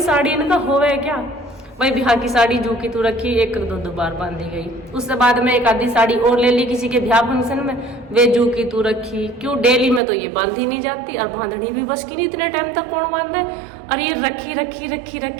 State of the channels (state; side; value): drops out; left; at 10.0 s